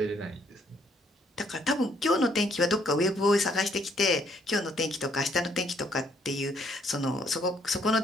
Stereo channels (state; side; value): normal; both; correlation 0.68